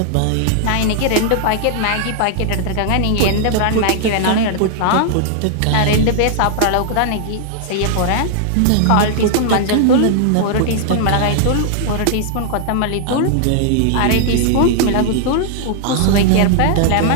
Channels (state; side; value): different; both; correlation -0.01